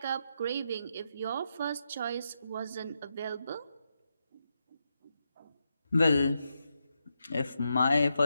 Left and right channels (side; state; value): both; inverted; correlation -0.84